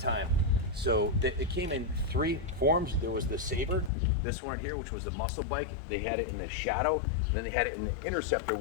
So it came in 3 forms. There was the Sabre, this one here, which was the muscle bike. They had it in the Shadow, and then they had it in the Interceptor,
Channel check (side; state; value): right; drops out; at 3.9 s